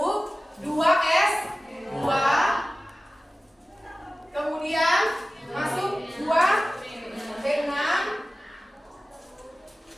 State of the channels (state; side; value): normal; both; correlation 0.96